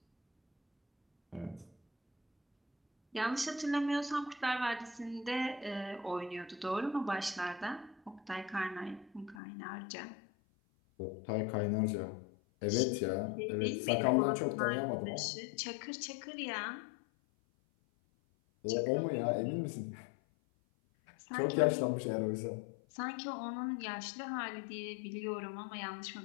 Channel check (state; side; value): drops out; right; at 9.4 s